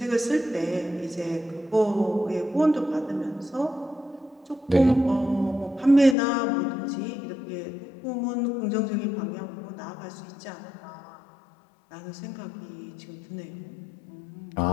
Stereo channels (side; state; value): right; drops out; at 6.2 s